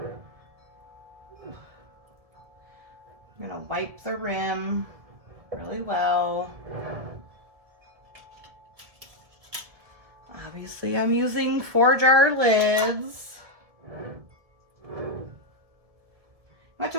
I'm gonna wipe the rim really well. Obviously, I'm using 4-jar lids. I have to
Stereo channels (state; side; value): late; left; 1.9 ms